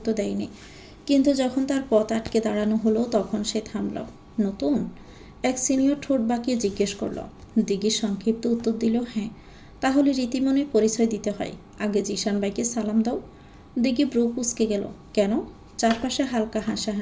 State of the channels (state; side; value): identical; both; correlation 1.00